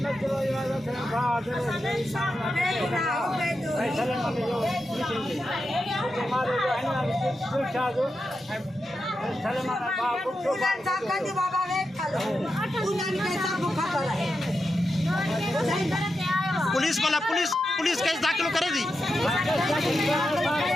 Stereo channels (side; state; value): both; normal; correlation 0.88